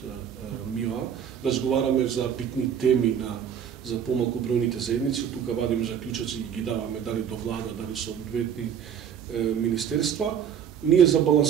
МИОА, разговараме за битни теми за помалку бројните заедници, од тука вадиме заклучоци и ги даваме дали до влада, дали со одветни министерства. Ние за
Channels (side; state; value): left; quieter; 8.5 dB